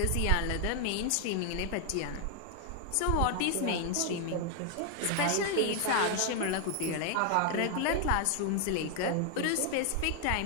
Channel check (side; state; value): both; different; correlation 0.00